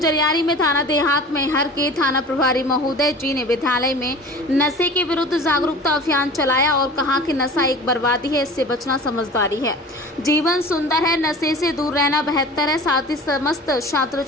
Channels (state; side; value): normal; both; correlation 0.40